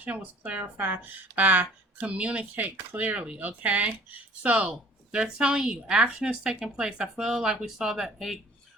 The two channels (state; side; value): normal; both; correlation 0.51